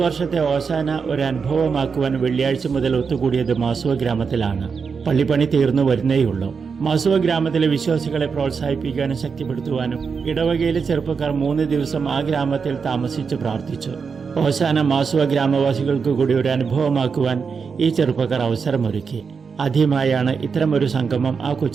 വർഷത്തെ ഓശാന ഒരു അനുഭവമാക്കുവാൻ വെള്ളിയാഴ്ച മുതൽ ഒത്തുകൂടിയത് മാസുവ ഗ്രാമത്തിലാണ്. പള്ളിപ്പണി തീർന്നു വരുന്നേയുള്ളൂ. മാസുവ ഗ്രാമത്തിലെ വിശ്വാസികളെ പ്രോത്സാഹിപ്പിക്കാനും ശക്തിപ്പെടുത്തുവാനും ഇടവകയിലെ ചെറുപ്പക്കാർ 3 ദിവസം ആ ഗ്രാമത്തിൽ താമസിച്ച് പ്രാർത്ഥിച്ചു. ഓശാന മാസുവ ഗ്രാമവാസികൾക്ക് കൂടി ഒരു അനുഭവമാക്കുവാൻ ഈ ചെറുപ്പക്കാർ അവസരമൊരുക്കി. ആദ്യമായാണ് ഇത്തരമൊരു സംഗമം ആ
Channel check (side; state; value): left; quieter; 5.6 dB